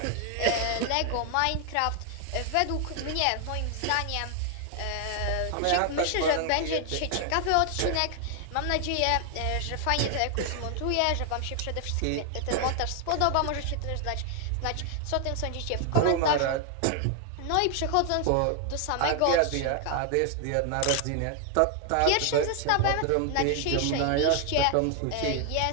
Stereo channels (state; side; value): different; both; correlation 0.00